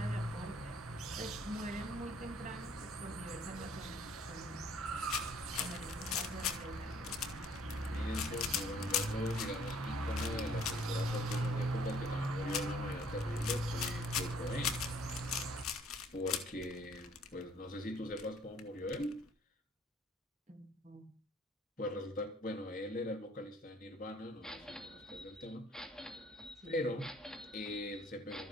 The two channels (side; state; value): both; normal; correlation 0.59